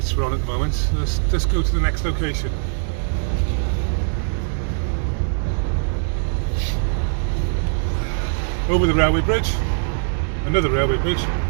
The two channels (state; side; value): silent; left; digital silence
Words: we're on at the moment. So let's go to the next location. Over the railway bridge, another railway bridge,